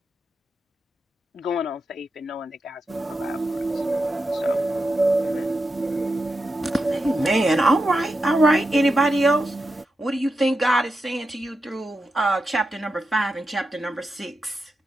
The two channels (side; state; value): both; normal; correlation 0.88